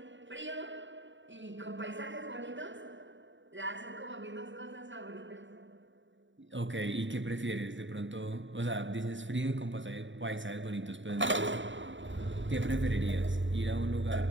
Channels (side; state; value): left; late; 0.55 ms